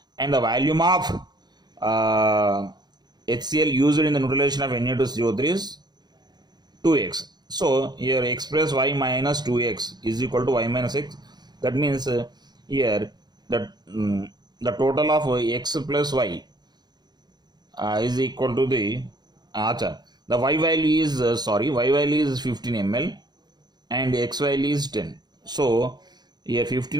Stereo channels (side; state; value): left; late; 0.20 ms